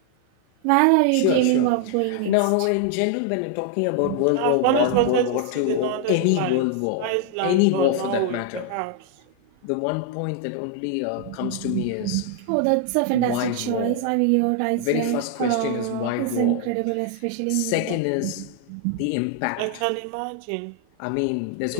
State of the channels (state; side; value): different; both; correlation 0.00